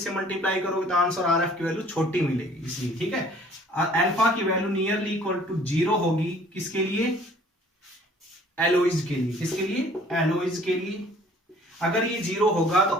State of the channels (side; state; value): both; normal; correlation 0.54